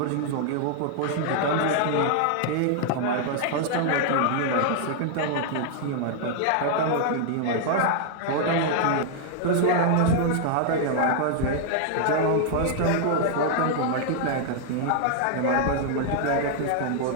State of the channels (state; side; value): different; both; correlation 0.00